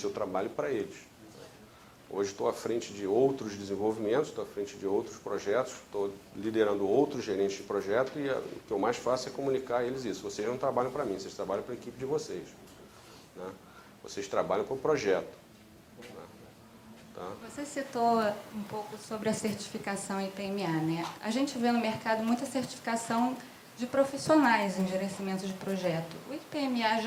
eu trabalho para eles. Hoje estou à frente de outros desenvolvimentos, estou à frente de outros projetos, estou liderando outros gerentes de projeto e o que eu mais faço é comunicar a eles isso. Vocês não trabalham para mim, vocês trabalham para a equipe de vocês, né? Vocês trabalham para o projeto, né? Tá? Você citou um pouco sobre a certificação IPMA, né? A gente vê no mercado muita certificação de profissionais em gerenciamento de projeto. O IPMA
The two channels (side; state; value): both; identical; correlation 1.00